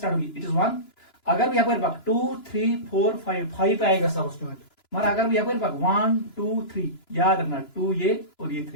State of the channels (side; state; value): right; late; 2.9 ms